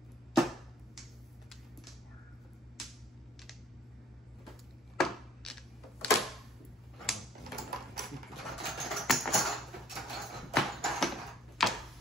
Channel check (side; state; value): both; normal; correlation 0.56